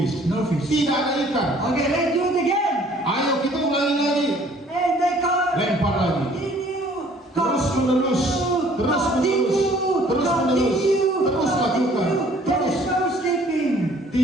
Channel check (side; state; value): both; normal; correlation 0.57